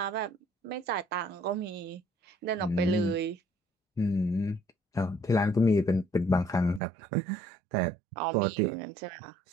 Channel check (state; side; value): drops out; left; at 6.8 s